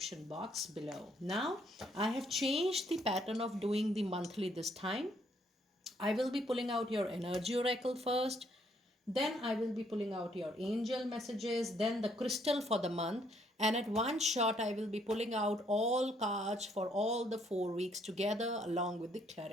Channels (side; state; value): both; normal; correlation 0.69